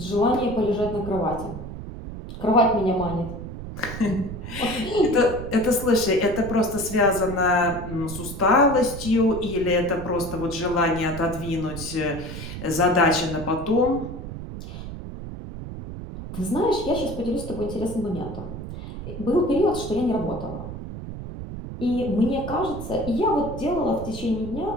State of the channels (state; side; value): noise; right; rumble, 9 dB below the sound